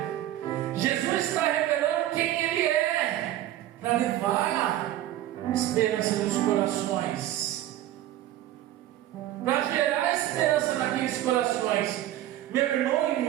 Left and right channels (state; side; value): quieter; left; 13.5 dB